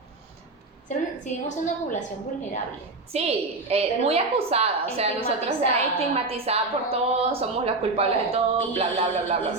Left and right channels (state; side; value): quieter; left; 3.3 dB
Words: Seguimos siendo una población vulnerable. Sí, muy acusada, o sea, nosotros estigmatizada por todo, somos las culpables de todo, bla, bla, bla, bla, bla.